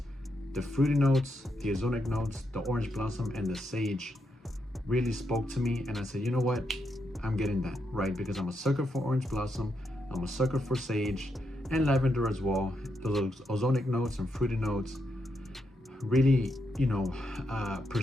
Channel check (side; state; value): both; normal; correlation 0.82